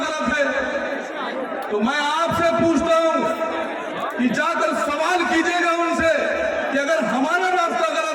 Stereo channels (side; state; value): both; identical; correlation 1.00